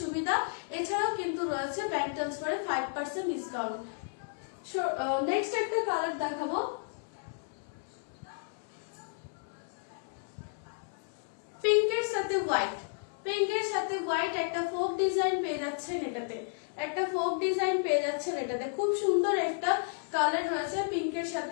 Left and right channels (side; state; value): right; silent; 56 dB below the other